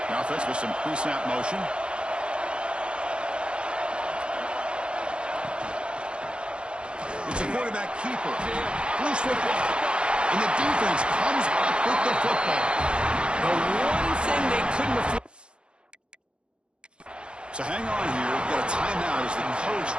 The offense with some pre-snap motion. It's a quarterback keeper. Loose football. And the defense comes up with the football. The one thing they couldn't afford. So hang on here. We've got a timeout as the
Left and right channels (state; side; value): late; left; 0.055 ms